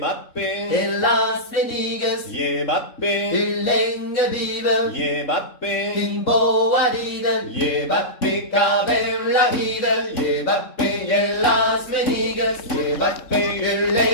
en Las Vegas, Mbappé, länge viva, Mbappé, in boa rida, Mbappé, a ver la vida, Mbappé, en Las Vegas, Mbappé,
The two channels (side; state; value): right; late; 3.7 ms